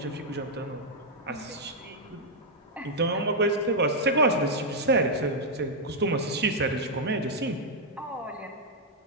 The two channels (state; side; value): normal; both; correlation -0.03